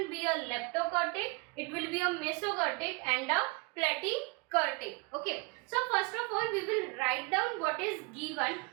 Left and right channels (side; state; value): left; quieter; 29.3 dB